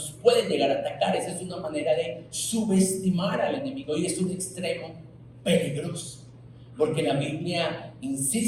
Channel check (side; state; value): both; identical; correlation 1.00